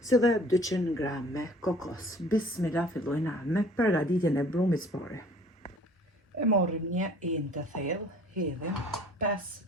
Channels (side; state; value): both; normal; correlation 0.52